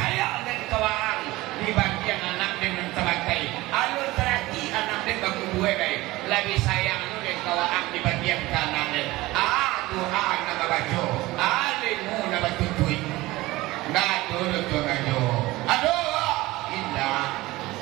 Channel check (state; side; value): quieter; left; 19.2 dB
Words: dan kawang dibanding anak dengan terakai. Alur terati anak dan baku buai baik lebih sayang lu dan kawang dibanding kanan dan doa nama baco alimu nama tutui nado tu rajo aduh indah